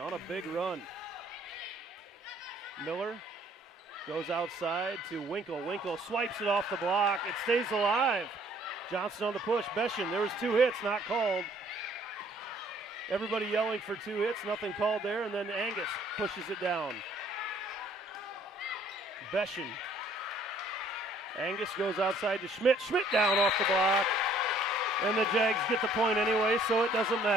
a big run. Miller goes outside to Winkle. Winkle swipes it off the block. It stays alive. Johnston on the push. Beshin, there was 2 hits, not called. Everybody yelling for 2 hits, nothing called there, and then Angus pushes it down. Beshin. Angus goes outside to Schmidt. Schmidt down off the block. And the Jags get the point anyway, so it doesn't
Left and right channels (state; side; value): normal; both; correlation 0.60